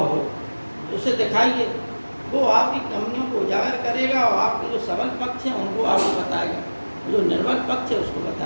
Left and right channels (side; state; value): both; inverted; correlation -1.00